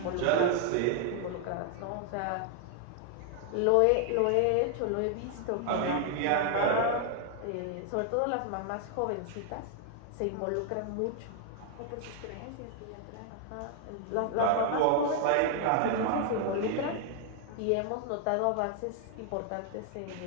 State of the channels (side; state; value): both; different; correlation 0.00